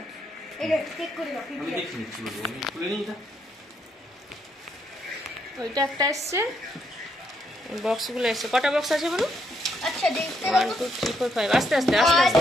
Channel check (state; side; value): normal; both; correlation 0.75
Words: এটা চেক করে দাও। আমি দেখছি নিচ্ছি বলবো, আমি খুলে নিই এটা। ওইটা একটা এসছে, বক্সগুলো এসছে। কটা বক্স আছে বলো? আচ্ছা দেখতে 1 2 3 4 5। আস্তে আস্তে আস্তে